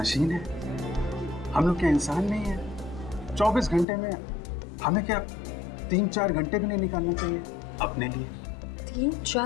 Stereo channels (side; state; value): right; drops out; at 3.9 s